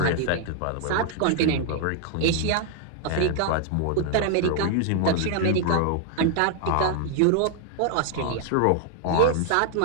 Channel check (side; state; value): both; different; correlation 0.00